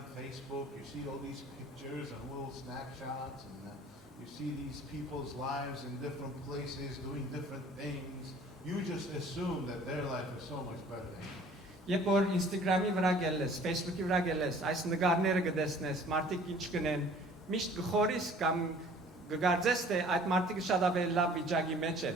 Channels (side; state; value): both; normal; correlation 0.51